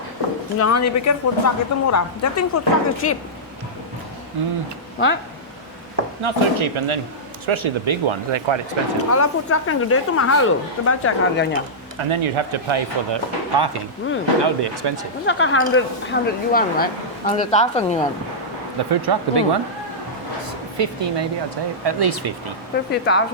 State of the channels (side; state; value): both; normal; correlation -0.12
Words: Jangan dipikir food truck itu murah. I think food truck is cheap. Right? Not so cheap, and then especially the big ones, they're quite expensive. Kalau food truck yang gede itu mahal loh. Coba cek harganya. And then you'd have to pay for the parking. That would be expensive. It's like 100 yuan, right? 100,000 yuan. The food truck, the big one? 50 maybe, I'd say. At least 50.